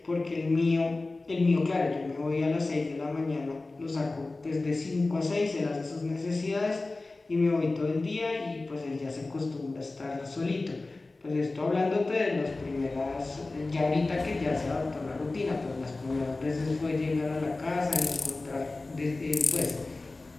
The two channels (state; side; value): quieter; right; 3.3 dB